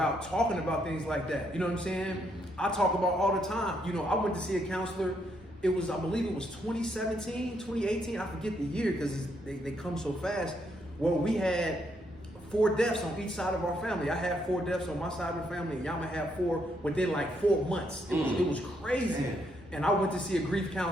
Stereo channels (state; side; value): normal; both; correlation 0.75